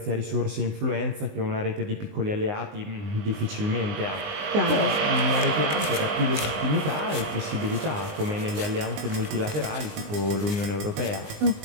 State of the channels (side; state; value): left; late; 19 ms